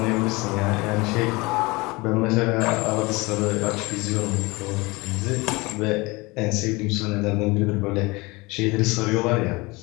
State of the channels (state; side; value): quieter; right; 24.1 dB